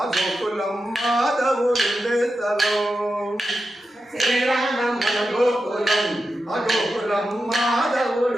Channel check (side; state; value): both; normal; correlation 0.90